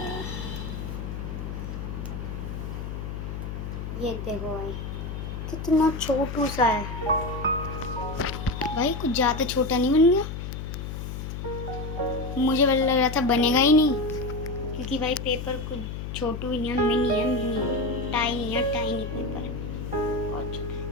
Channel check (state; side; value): noise; left; hum, 6 dB below the sound